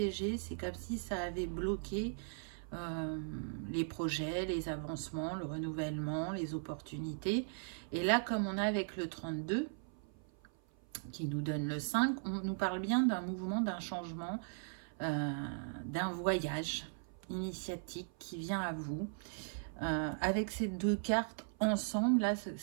c'est comme si ça avait bloqué les projets, les avancements, le renouvellement, les opportunités. Et là, comme on a avec le 32, qui nous donne le 5, on nous parle bien d'un mouvement, d'un changement, d'un voyage initiatique qui vient à vous. Avec ces deux cartes ensemble, là,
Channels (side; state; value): left; silent; 52 dB below the other